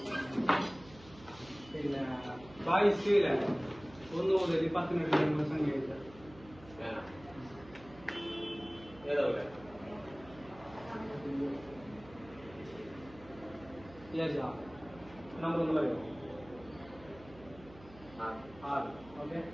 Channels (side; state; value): right; noise; hum, 20 dB below the sound